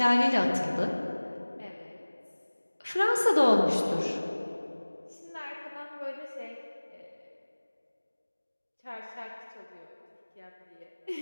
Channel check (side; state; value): both; inverted; correlation -1.00